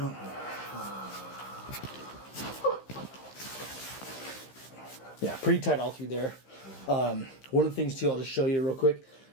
Yeah, pretty tight all through there. One of the things too, I'll just show you real quick.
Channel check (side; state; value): right; late; 15 ms